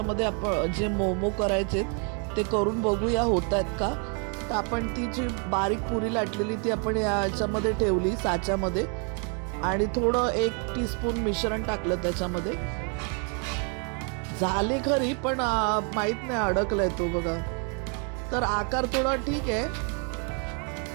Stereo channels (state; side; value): quieter; left; 38.8 dB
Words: आपण जे मोमो करायचे ते करून बघूया होत आहेत का. तर आपण ती जी बारीक पुरी लाटलेली ती आपण याच्यामध्ये ठेवली साच्यामध्ये आणि थोडं 1 टीस्पून मिश्रण टाकलं त्याच्यामध्ये. झाली खरी पण माहीत नाही अडकलाय तो बघा. तर आकार थोडा ठीक आहे,